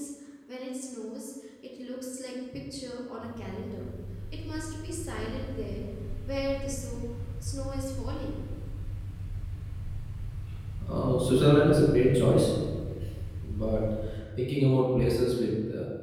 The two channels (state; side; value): identical; both; correlation 1.00